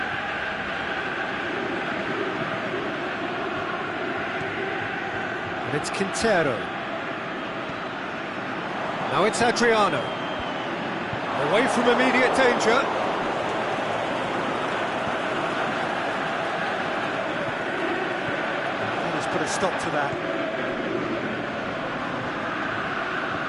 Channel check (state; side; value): identical; both; correlation 1.00